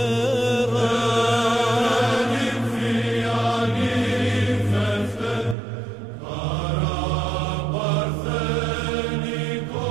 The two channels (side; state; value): left; drops out; at 5.6 s